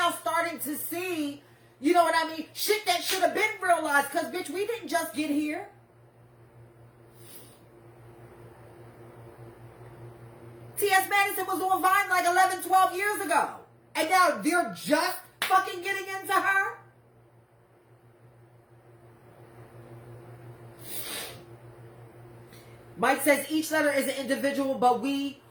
starting to see, you know what I mean? Shit that should have been realized, because, bitch, we didn't just get here. T.S. Madison was on Vine like 11, 12 years ago. And now they're just fucking getting into her? Mike says each letter is an individual, but we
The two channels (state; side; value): identical; both; correlation 1.00